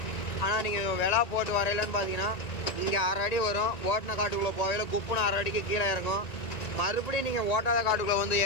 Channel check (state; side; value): late; right; 1.9 ms